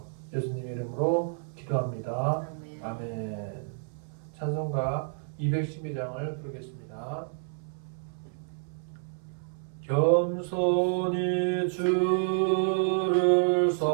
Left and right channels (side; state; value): left; silent; 58 dB below the other